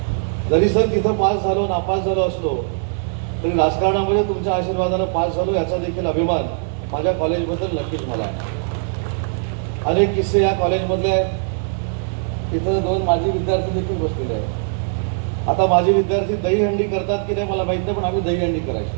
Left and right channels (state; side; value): silent; left; 65 dB below the other